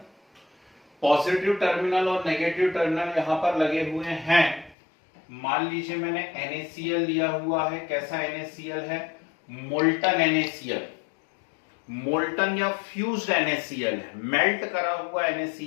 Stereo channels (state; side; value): drops out; right; at 4.8 s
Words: पॉजिटिव टर्मिनल और नेगेटिव टर्मिनल यहां पर लगे हुए हैं। मान लीजिए मैंने NaCl लिया हुआ है। कैसा NaCl है? मोल्टन NaCl, मोल्टन या फ्यूज्ड NaCl है, मेल्ट करा हुआ